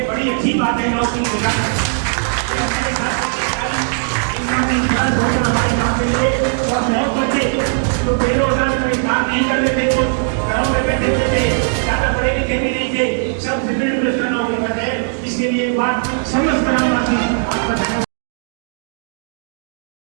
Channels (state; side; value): silent; left; digital silence